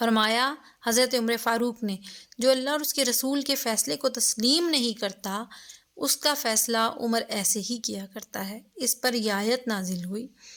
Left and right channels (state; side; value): identical; both; correlation 1.00